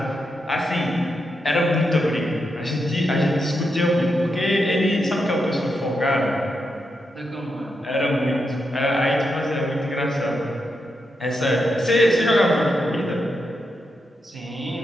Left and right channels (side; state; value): both; normal; correlation 0.84